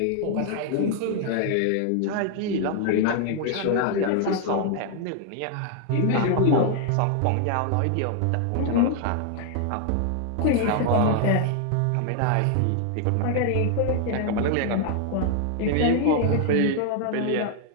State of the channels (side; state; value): both; different; correlation 0.00